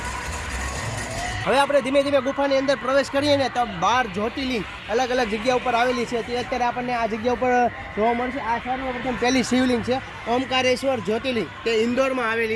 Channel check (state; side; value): identical; both; correlation 1.00